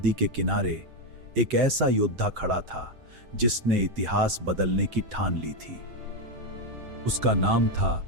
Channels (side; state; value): left; late; 7.8 ms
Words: के किनारे एक ऐसा योद्धा खड़ा था जिसने इतिहास बदलने की ठान ली थी। उसका नाम था